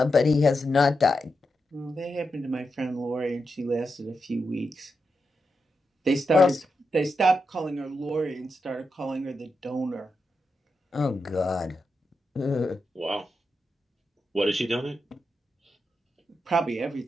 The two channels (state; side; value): normal; both; correlation 0.87